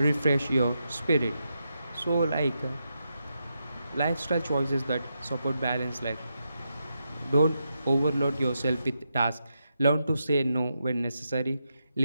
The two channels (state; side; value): inverted; both; correlation -0.85